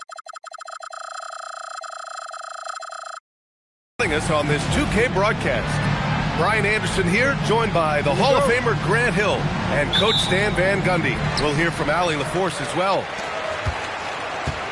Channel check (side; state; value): both; identical; correlation 1.00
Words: Us on this 2K broadcast. Brian Anderson here, joined by the Hall of Famer Grant Hill and Coach Stan Van Gundy. We'll hear from Allie LaForce as well.